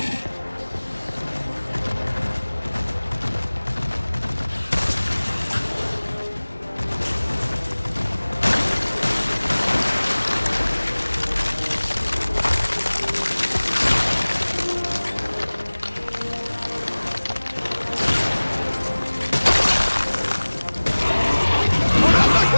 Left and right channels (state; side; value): inverted; both; correlation -1.00